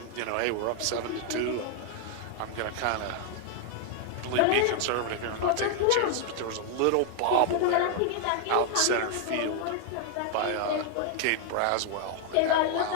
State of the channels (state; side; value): different; both; correlation 0.00